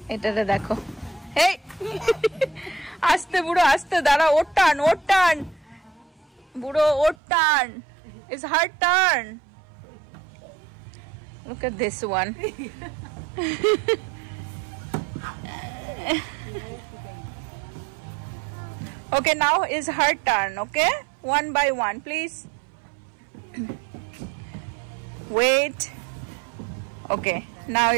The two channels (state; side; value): drops out; left; at 7.2 s